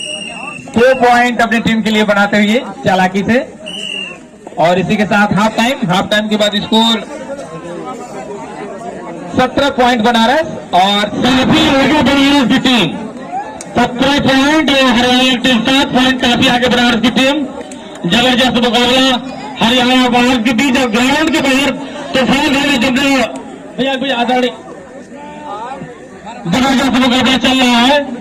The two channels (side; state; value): both; identical; correlation 1.00